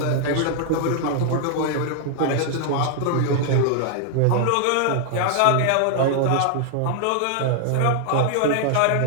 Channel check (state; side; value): different; both; correlation 0.00